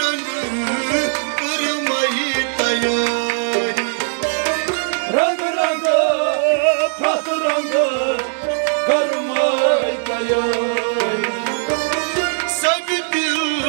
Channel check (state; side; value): silent; left; 66 dB below the other